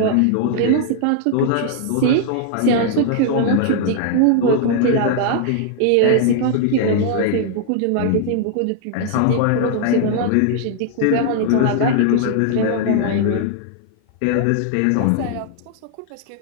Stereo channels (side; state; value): both; different; correlation 0.00